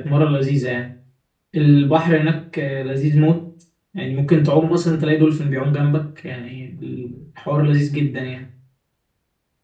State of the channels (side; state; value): both; identical; correlation 1.00